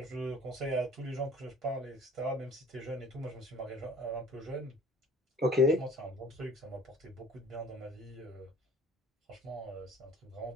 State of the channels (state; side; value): normal; both; correlation 0.49